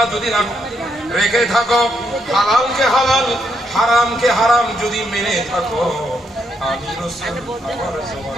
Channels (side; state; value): both; normal; correlation 0.77